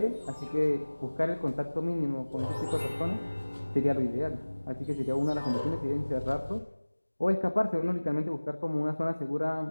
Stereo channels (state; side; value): inverted; both; correlation -1.00